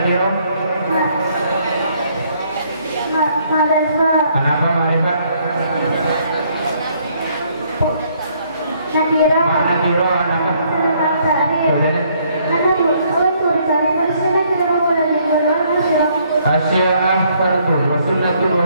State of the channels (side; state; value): both; inverted; correlation -0.67